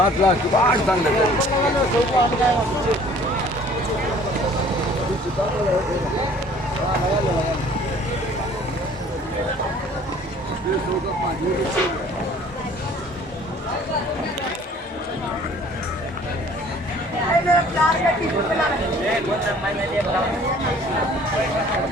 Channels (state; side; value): normal; both; correlation 0.53